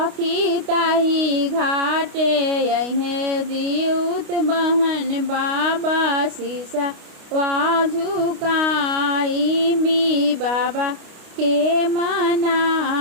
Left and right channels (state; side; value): late; left; 29 ms